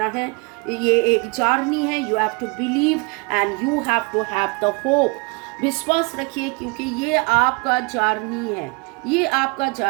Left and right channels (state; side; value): quieter; left; 28.9 dB